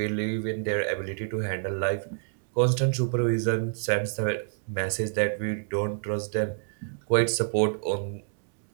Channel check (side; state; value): left; silent; digital silence